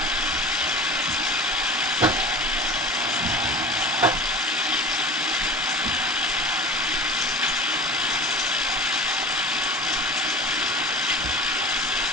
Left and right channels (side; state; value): both; normal; correlation 0.37